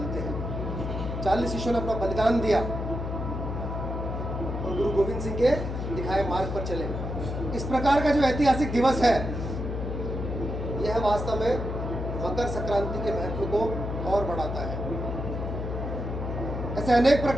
हैं। 40 शिष्यों ने अपना बलिदान दिया और गुरु गोविंद सिंह के दिखाए मार्ग पर चले। इस प्रकार का जो ऐतिहासिक दिवस है यह वास्तव में मकर संक्रांति के महत्व को और बढ़ाता है। ऐसे अनेक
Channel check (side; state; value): left; noise; hum, 4 dB below the sound